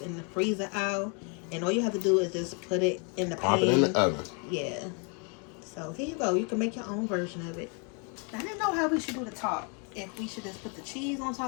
in the freezer aisle. And all you have to do is just put it in the pan. Pop it in the oven. Yeah. So here you go. You can make your own version of it. I didn't know how we should do the top. If we should just put the cheese on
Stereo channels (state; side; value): quieter; right; 36.4 dB